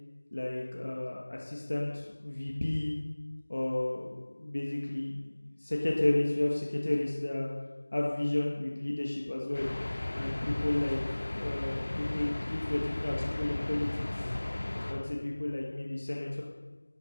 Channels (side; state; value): both; inverted; correlation -1.00